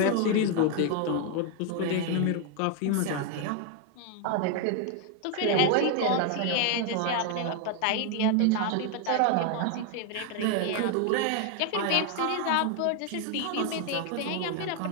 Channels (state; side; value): different; both; correlation 0.01